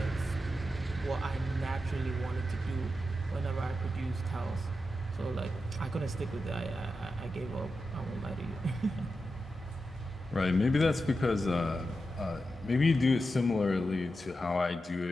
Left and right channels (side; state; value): both; normal; correlation 0.89